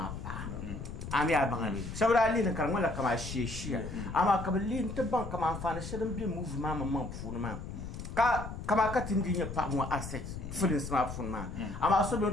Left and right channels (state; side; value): noise; left; rumble, 8 dB below the sound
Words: pa ami abangali sabra ali ne kan wala kama sheshia ama kabali ntaban kama afana shirin bi move ma funu ma ka kama ka tindinya pa mo asset fulin smartphone ma ama so be